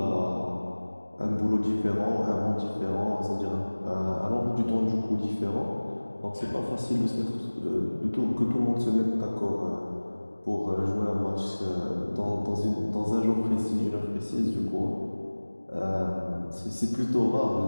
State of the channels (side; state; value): both; inverted; correlation -1.00